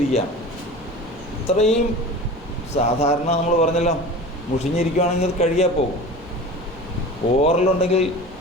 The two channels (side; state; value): both; normal; correlation 0.35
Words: ഇത്രയും സാധാരണ നമ്മൾ പറഞ്ഞല്ലോ, മുഷിഞ്ഞിരിക്കുകയാണെങ്കിൽ അത് കഴുകിയാൽ പോകും. ഓറലുണ്ടെങ്കിൽ